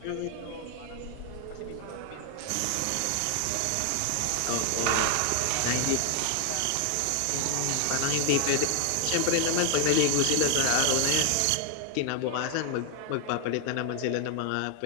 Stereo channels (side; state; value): both; different; correlation 0.00